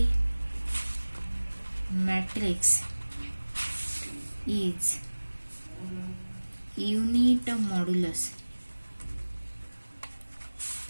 matrix is unit modulus,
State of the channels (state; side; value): inverted; both; correlation -1.00